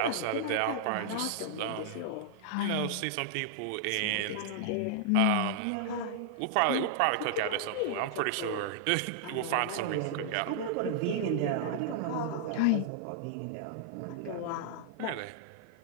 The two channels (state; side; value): different; both; correlation -0.01